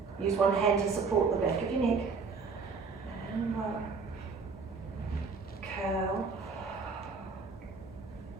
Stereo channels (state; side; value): quieter; left; 4.8 dB